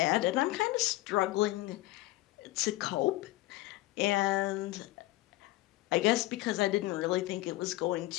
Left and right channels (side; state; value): right; quieter; 18.1 dB